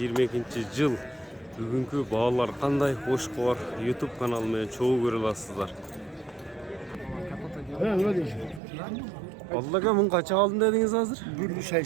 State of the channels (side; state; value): left; drops out; at 8.6 s